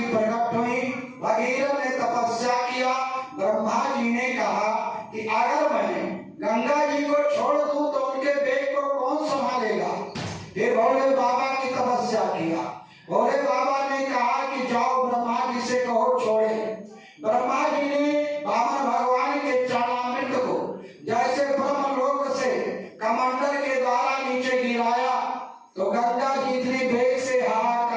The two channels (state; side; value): identical; both; correlation 1.00